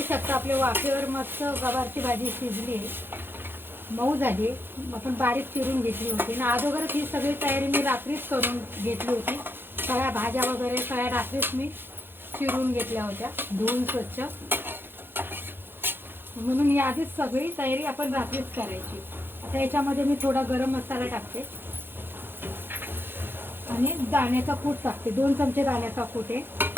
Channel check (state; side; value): late; left; 0.10 ms